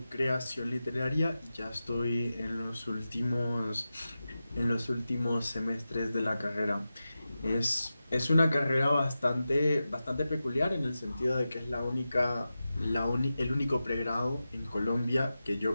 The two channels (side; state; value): both; inverted; correlation -0.93